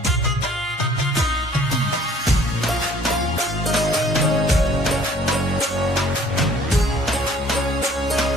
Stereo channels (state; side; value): normal; both; correlation 0.55